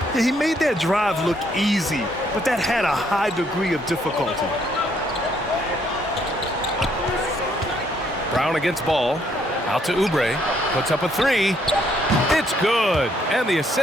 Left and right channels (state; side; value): normal; both; correlation 0.69